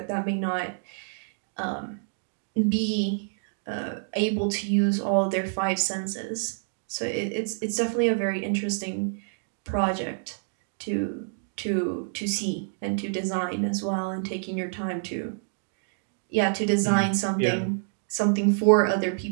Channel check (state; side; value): silent; left; digital silence